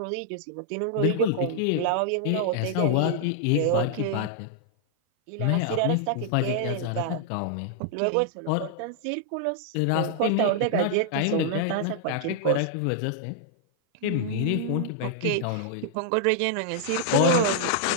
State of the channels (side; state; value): both; different; correlation -0.01